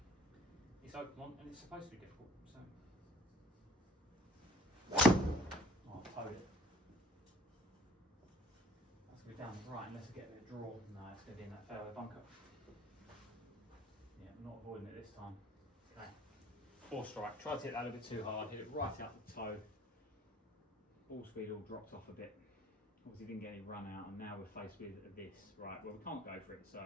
It's Oakmont, and it's supposed to be difficult. So, oh, I've towed it. That's going to be down the right unless I get a bit of draw. No, it's going to be in that fairway bunker. Yeah, I'm not avoiding it this time. Okay. 4 strike. Tried to hit that a little bit too hard. Hit it right out the toe. Ball speed all dropped off a bit. Obviously didn't get any run out, and now we're faced with this. Right, well we can't go for it,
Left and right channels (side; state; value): both; normal; correlation 0.53